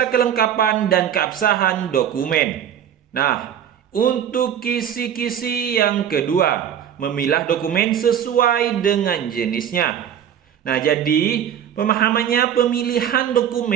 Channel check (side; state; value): left; quieter; 9.4 dB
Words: kelengkapan dan keabsahan dokumen. Nah, untuk kisi-kisi yang kedua, memilah dokumen sesuai dengan jenisnya. Nah, jadi pemahamannya, pemilihan